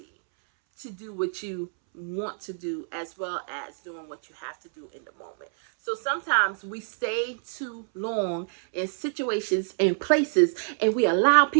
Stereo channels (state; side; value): silent; left; 60 dB below the other